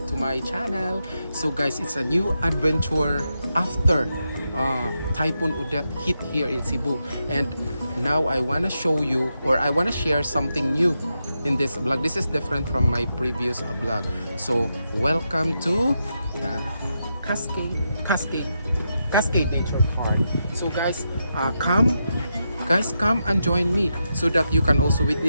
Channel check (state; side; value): inverted; both; correlation -0.85